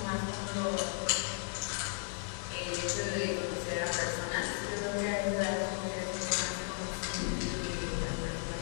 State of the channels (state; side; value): silent; right; 54 dB below the other